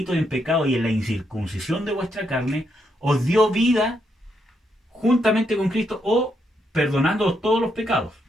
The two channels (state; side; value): normal; both; correlation 0.78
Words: y en pecado y en la incircuncisión de vuestra carne, os dio vida juntamente con Cristo o perdonando todos los pecados.